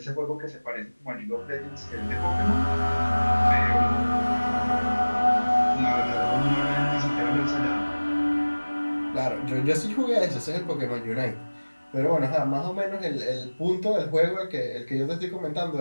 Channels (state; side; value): inverted; both; correlation -1.00